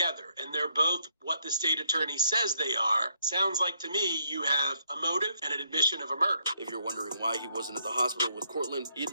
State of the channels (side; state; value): both; inverted; correlation -0.73